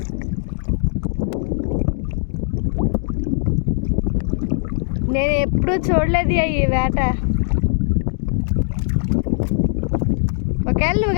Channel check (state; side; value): silent; right; digital silence